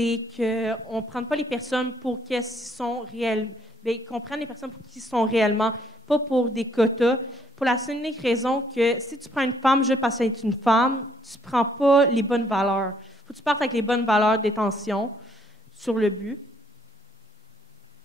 qu'on ne prenne pas les personnes pour qui elles sont réelles, mais qu'on prenne les personnes pour qui sont réellement, pas pour des quotas, pour la seule unique raison que si tu prends une femme juste parce qu'elle est une femme, tu ne prends pas les bonnes valeurs. Il faut que tu partes avec les bonnes valeurs d'intention sur le but.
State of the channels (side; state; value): both; normal; correlation 0.67